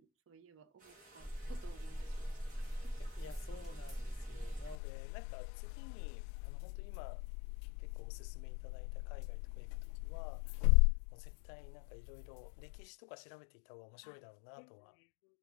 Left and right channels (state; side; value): drops out; right; at 4.8 s